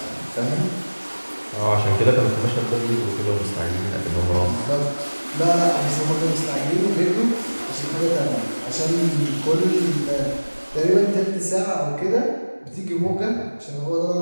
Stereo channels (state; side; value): inverted; both; correlation -1.00